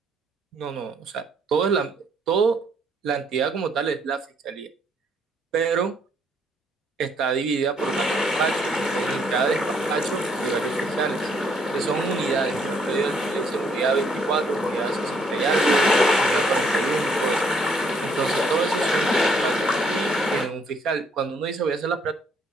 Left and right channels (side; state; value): both; normal; correlation 0.68